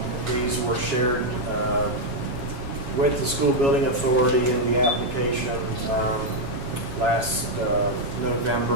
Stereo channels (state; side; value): late; left; 7.2 ms